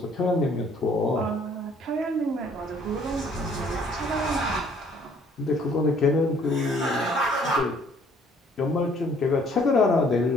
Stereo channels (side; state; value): both; normal; correlation 0.60